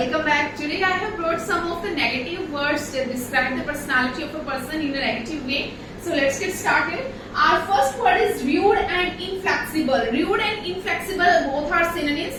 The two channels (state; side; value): identical; both; correlation 1.00